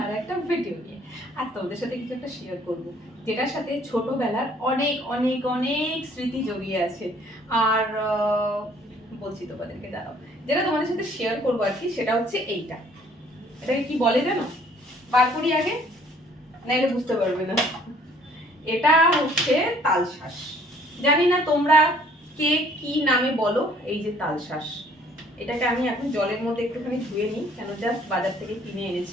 আর একটা ভিডিও নিয়ে। আর তোমাদের সাথে কিছু একটা শেয়ার করব, যেটার সাথে ছোটবেলার অনেক অনেক অনেক স্মৃতি জড়িয়ে আছে। আর বলছি তোমাদেরকে, দাঁড়াও, যেটা তোমাদের সাথে শেয়ার করবো আর কি, সেটা হচ্ছে এইটা। এটাকে কি বলে জানো? বার করি আগে, না এটা বুঝতে পারবে না। এটা হচ্ছে তালশাঁস। জানি না তোমরা কে কি নামে বলো। এই যে তালশাঁস, এটাকে আমি এখন জলের মধ্যে একটুখানি ধুয়ে নিই, কেন জাস্ট বাজার থেকে কিনে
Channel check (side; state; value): both; normal; correlation 0.59